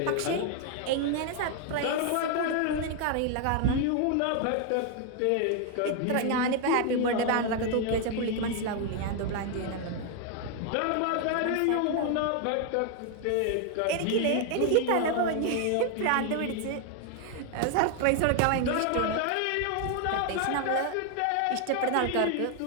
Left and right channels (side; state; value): both; different; correlation 0.00